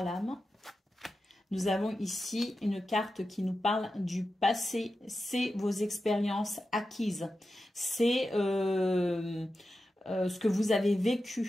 lames. Nous avons ici une carte qui nous parle du passé. C'est vos expériences acquises. C'est ce que vous avez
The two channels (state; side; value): normal; both; correlation 0.91